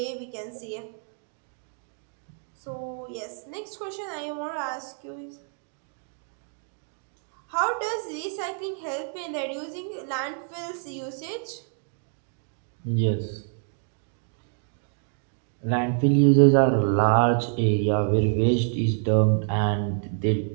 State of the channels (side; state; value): left; silent; 60 dB below the other